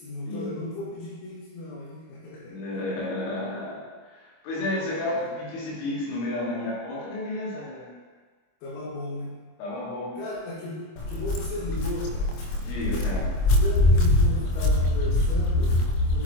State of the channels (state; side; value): late; right; 25 ms